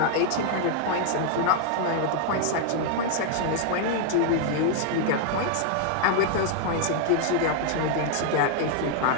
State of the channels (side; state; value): both; different; correlation 0.00